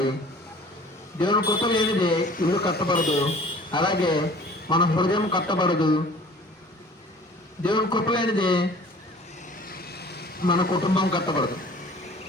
దేవుని కృప లేనిదే ఇల్లు కట్టబడదు. అలాగే మన హృదయం కట్టబడదు. దేవుని కృప లేనిదే మన కుటుంబం కట్టబడదు.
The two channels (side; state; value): both; normal; correlation 0.48